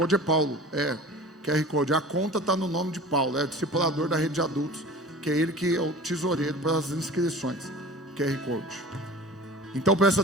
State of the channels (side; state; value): both; normal; correlation 0.40